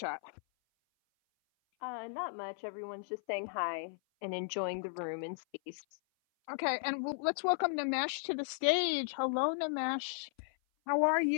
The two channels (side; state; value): right; silent; 54 dB below the other